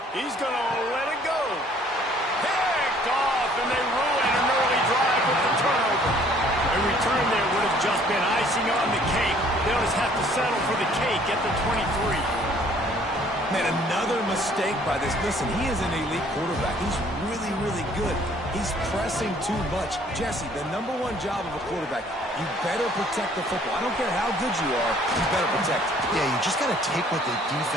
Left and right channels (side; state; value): both; normal; correlation 0.58